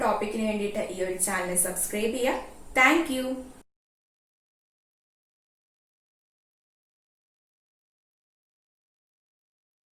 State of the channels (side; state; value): both; identical; correlation 1.00